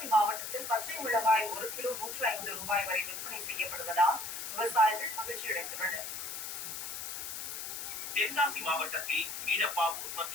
மாவட்டத்தில் பச்சை மிளகாய் 1 கிலோ 105 ரூபாய் வரை விற்பனை செய்யப்படுவதால் விவசாயிகள் மகிழ்ச்சியடைந்துள்ளனர். தென்காசி மாவட்டத்தில் கீழப்பாவூர்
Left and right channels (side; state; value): left; noise; hiss, 6 dB below the sound